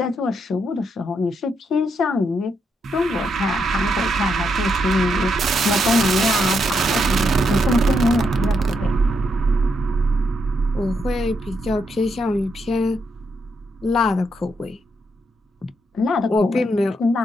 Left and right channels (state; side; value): normal; both; correlation 0.79